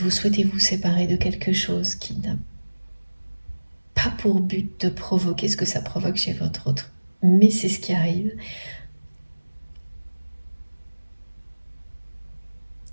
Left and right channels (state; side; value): inverted; both; correlation -1.00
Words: souhaitez vous séparer de quelque chose qui n'a pas pour but de provoquer ce que ça provoque chez votre autre. Mais c'est ce qui arrive.